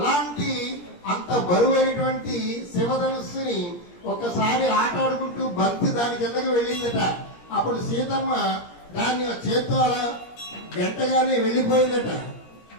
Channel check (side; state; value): right; late; 17 ms